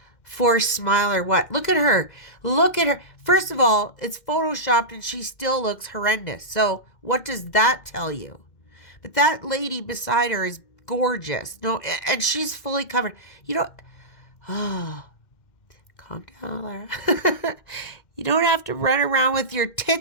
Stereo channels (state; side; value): late; right; 2.1 ms